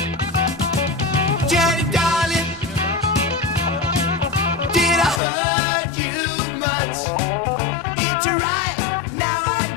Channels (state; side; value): drops out; right; at 5.2 s